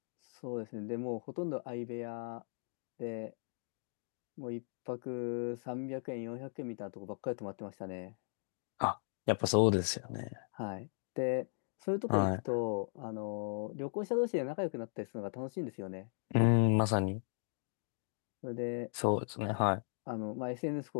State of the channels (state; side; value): silent; right; digital silence